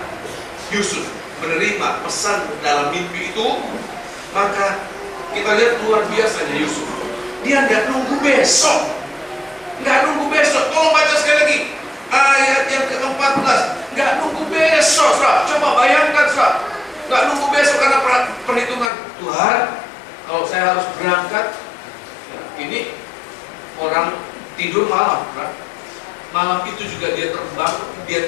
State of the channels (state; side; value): drops out; right; at 18.9 s